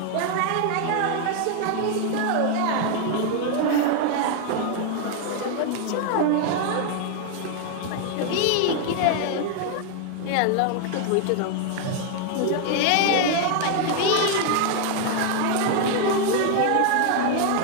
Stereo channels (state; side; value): different; both; correlation 0.00